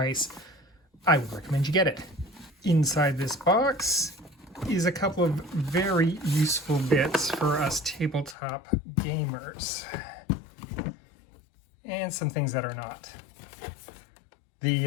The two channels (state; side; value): drops out; right; at 8.3 s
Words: I would recommend you get it. Inside this box is a couple of very useful bits for us tabletop gamers. And some things that are not.